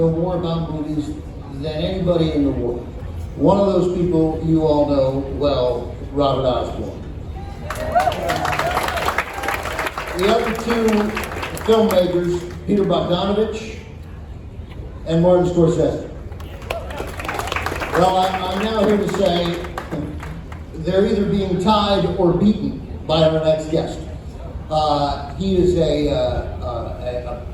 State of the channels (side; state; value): both; identical; correlation 1.00